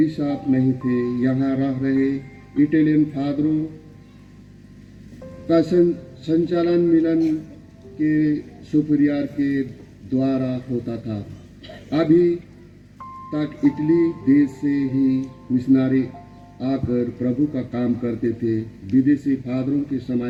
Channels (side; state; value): both; identical; correlation 1.00